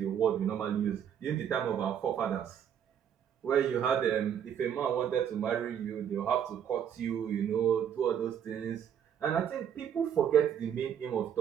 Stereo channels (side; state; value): left; quieter; 8.8 dB